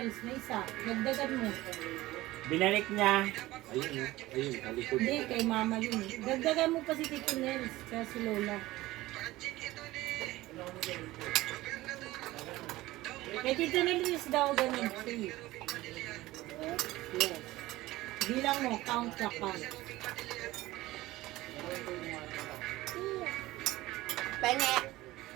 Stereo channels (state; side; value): quieter; left; 17.8 dB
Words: Na isa. Dagdagan mo. Binalik niya. Ayun, ayun, talikod. Hindi, kay mama yun. Dagdagan mo pa si Tito Nels. Kaya si Lola. Kay Tito Nels daw ganun. 3. Yes. Bilang mo, count na count. Penge.